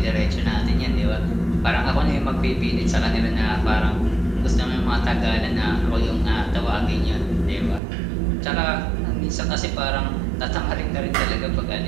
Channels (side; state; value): left; drops out; at 7.8 s